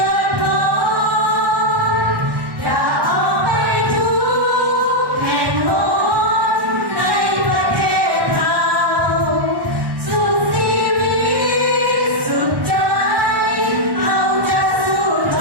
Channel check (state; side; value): late; left; 1.1 ms